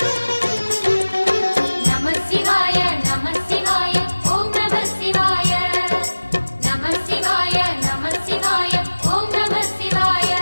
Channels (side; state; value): both; inverted; correlation -1.00